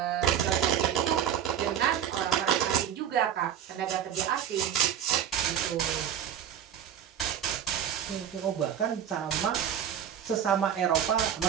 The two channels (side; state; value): left; quieter; 9.5 dB